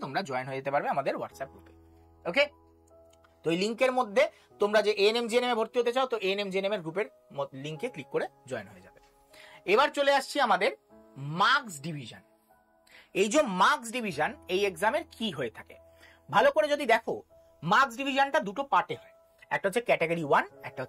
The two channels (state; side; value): identical; both; correlation 1.00